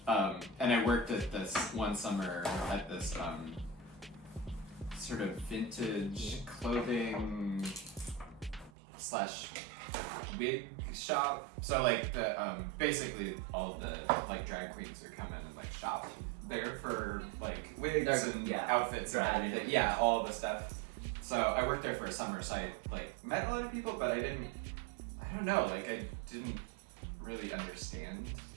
And I worked at this one summer at this sort of vintage clothing / wig shop. So like the basically all the like drag queens are coming and like shop there for like wigs and outfits and everything. Yeah, all the stuff. So I worked there for a summer, so I like met a lot of people, but I don't know, like I didn't really understand,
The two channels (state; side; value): drops out; left; at 8.7 s